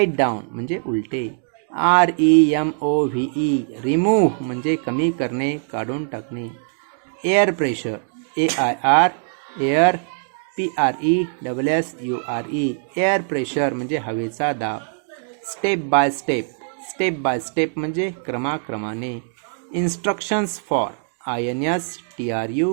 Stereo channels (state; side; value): silent; left; digital silence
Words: down म्हणजे उलटे. REMOVE रिमूव्ह म्हणजे कमी करणे, काढून टाकणे. Air pressure AIR air PRESSURE air pressure म्हणजे हवेचा दाब. स्टेप बाय स्टेप म्हणजे क्रमाक्रमाने. Instructions for